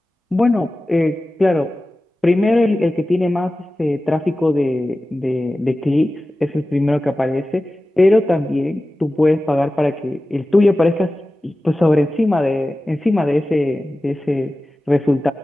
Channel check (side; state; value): both; normal; correlation 0.95